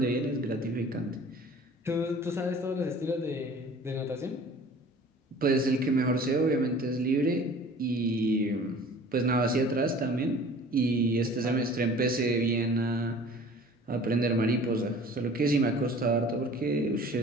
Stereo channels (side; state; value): both; normal; correlation 0.46